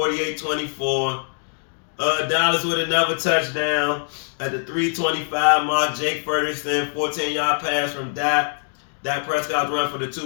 Dallas with another touchdown at the 3:25 mark. Jake Ferguson, 14-yard pass from Dak. Dak Prescott run for the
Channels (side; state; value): right; silent; digital silence